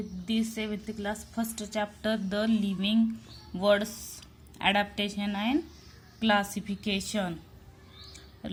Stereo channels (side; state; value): both; identical; correlation 1.00